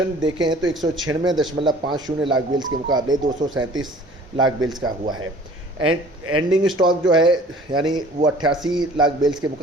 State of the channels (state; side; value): normal; both; correlation 0.50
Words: देखें तो 196.50 लाख बेल्स के मुकाबले 237 लाख बेल्स का हुआ है। एंडिंग स्टॉक जो है यानी वो 88 लाख बेल्स के